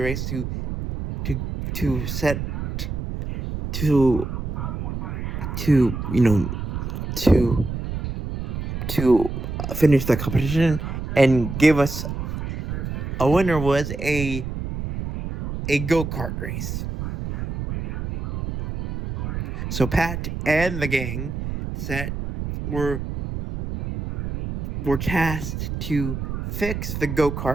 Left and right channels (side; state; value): right; noise; rumble, 5 dB below the sound